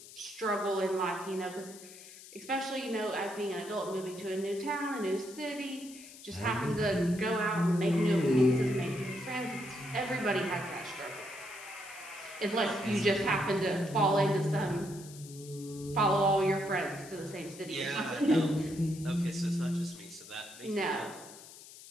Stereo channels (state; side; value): noise; left; hiss, 17 dB below the sound